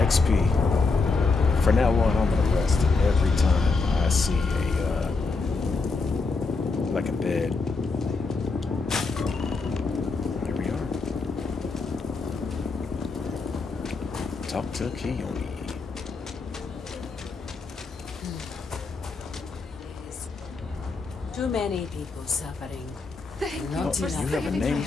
XP. For now on, I'm gonna rest every time I see a like a bed. Here we are. Talk to Kiyomi. Too many people suffering. Thank Not you for enough. You have a saving name my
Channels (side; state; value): right; quieter; 4.0 dB